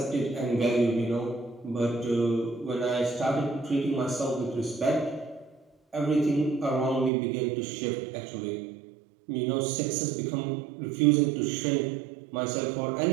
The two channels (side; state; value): left; drops out; at 7.1 s